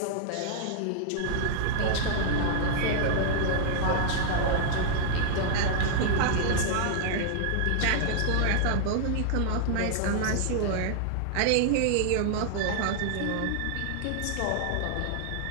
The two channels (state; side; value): different; both; correlation -0.01